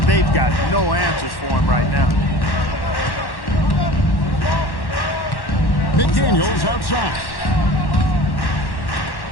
they've got no answers for him right now. McDaniels outside.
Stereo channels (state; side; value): late; right; 1.1 ms